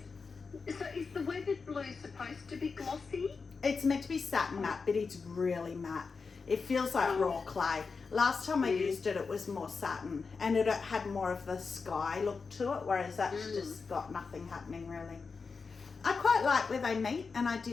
is the weathered blue supposed to be glossy? It's meant to be satin matte, but it's really matte. It feels like raw clay. Last time I used it, it was more satin, and it had more of the sky look to it, whereas that's just got nothing happening really. I quite like where they meet, and I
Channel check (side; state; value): right; quieter; 4.8 dB